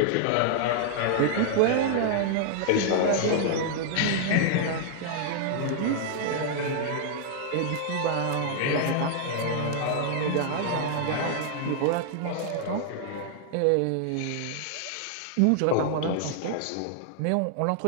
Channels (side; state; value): both; different; correlation -0.01